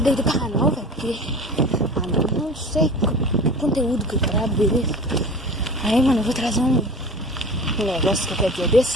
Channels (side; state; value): both; normal; correlation 0.37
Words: aí do canal, velho, porque... não sei que conteúdo que eu gravo, beleza? Aí, mano, eu vou trazer um negócio que qualquer dia desse,